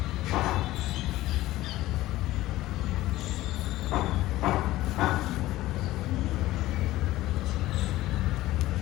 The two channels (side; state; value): right; quieter; 16.5 dB